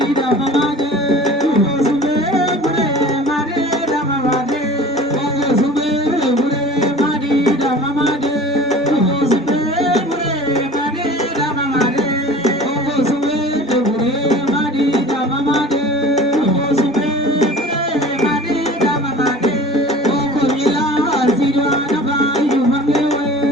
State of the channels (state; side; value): normal; both; correlation 0.41